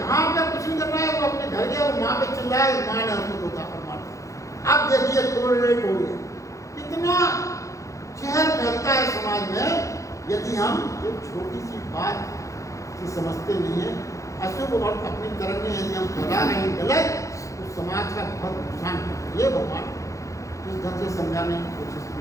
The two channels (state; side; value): late; right; 0.15 ms